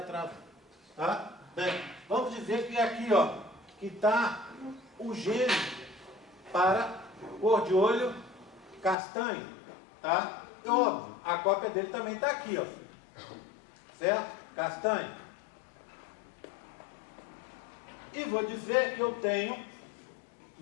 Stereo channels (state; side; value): drops out; right; at 9.0 s